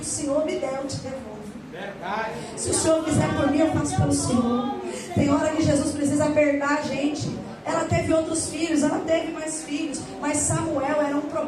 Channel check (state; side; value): identical; both; correlation 1.00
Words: Senhor me der, eu te devolvo. Verdade. Se o Senhor fizer por mim, eu faço pelo Senhor. Tem hora que Jesus precisa apertar a gente. Ela teve outros filhos, ela teve mais filhos, mas Samuel era um